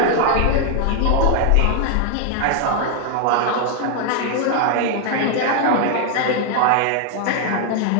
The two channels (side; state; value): both; different; correlation 0.00